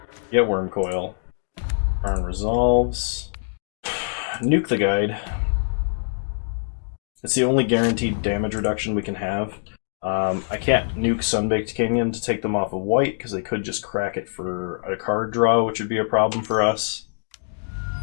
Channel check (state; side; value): silent; right; digital silence